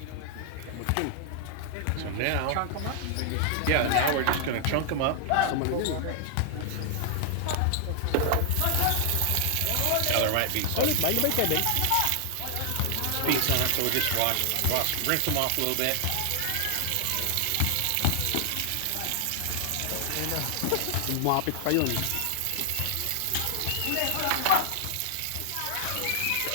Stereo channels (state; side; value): different; both; correlation 0.00